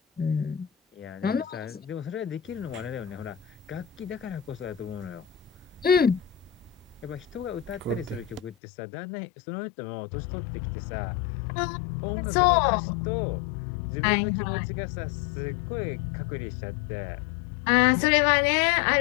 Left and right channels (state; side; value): drops out; right; at 8.6 s